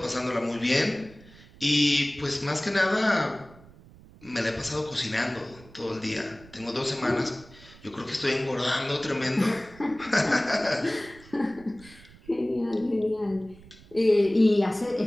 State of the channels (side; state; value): right; noise; rumble, 22 dB below the sound